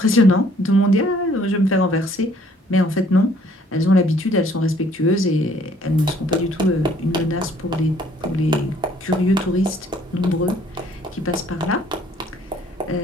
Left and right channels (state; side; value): normal; both; correlation 0.61